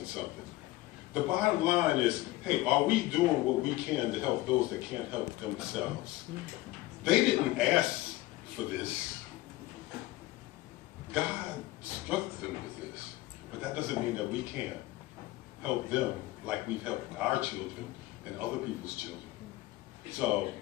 something. The bottom line is, hey, are we doing what we can to help those that can't help themselves? They didn't ask for this. God struck them with this. But that doesn't mean that we can't help them like we've helped our children and other people's children. So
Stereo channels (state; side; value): quieter; right; 18.2 dB